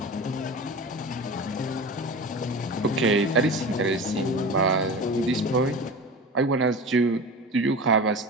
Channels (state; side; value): normal; both; correlation 0.32